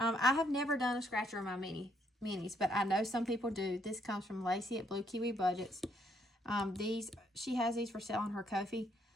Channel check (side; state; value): both; normal; correlation 0.71